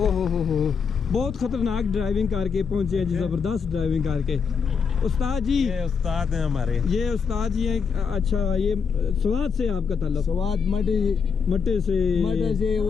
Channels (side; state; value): right; quieter; 6.0 dB